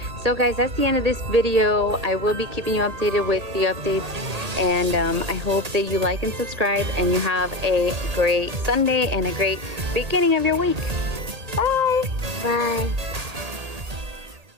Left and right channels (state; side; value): late; left; 1.8 ms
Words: So guys, that's the end of this video. I will be keeping you updated with the updates, and I hope that you like and subscribe and you have a great Sunday and a great beginning of your week. Bye. Bye.